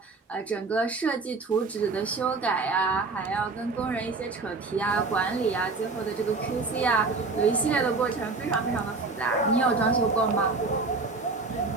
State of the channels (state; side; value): quieter; left; 3.8 dB